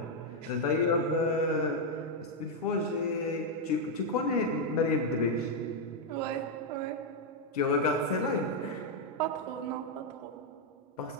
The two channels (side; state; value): both; normal; correlation 0.00